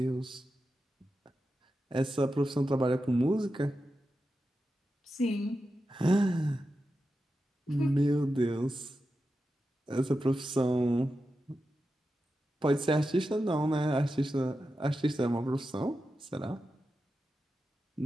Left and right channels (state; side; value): normal; both; correlation 0.90